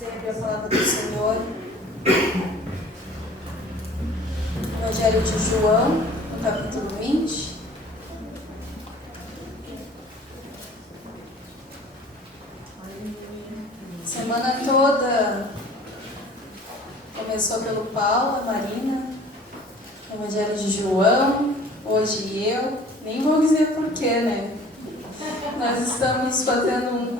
a abrir a palavra do Senhor. Evangelho de João, no capítulo 20. Semana toda começou pelo Paulo, a Marina, Evangelho de João, hoje eu, nem vou dizer porquê, né? Nós estamos fazendo um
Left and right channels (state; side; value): normal; both; correlation 0.48